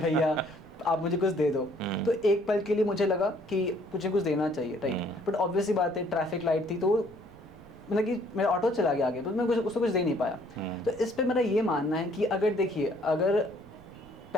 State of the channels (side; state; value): right; noise; rumble, 24 dB below the sound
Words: आप मुझे कुछ दे दो। तो एक पल के लिए मुझे लगा कि मुझे कुछ देना चाहिए, राइट। बट ऑब्वियसली बात है, ट्रैफिक लाइट थी, तो मतलब कि मेरा ऑटो चला गया आगे, तो मैं उसको कुछ दे नहीं पाया। तो इस पे मेरा ये मानना है कि अगर देखिए, अगर